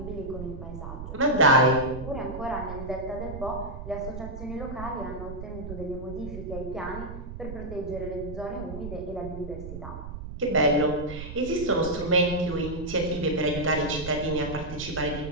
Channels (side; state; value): right; noise; rumble, 9 dB below the sound